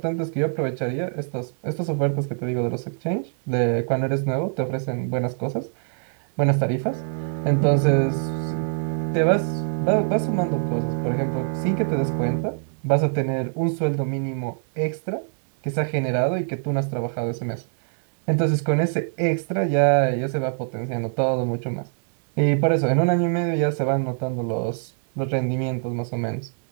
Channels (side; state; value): left; silent; 58 dB below the other